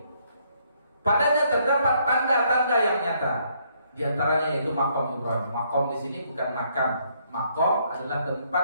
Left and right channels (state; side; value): inverted; both; correlation -0.70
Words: Padanya terdapat tanda-tanda yang nyata. Di antaranya yaitu maqam Ibrahim. Maqam di sini bukan makam. Maqam adalah